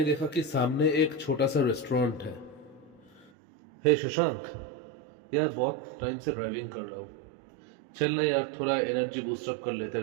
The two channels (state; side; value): drops out; left; at 3.3 s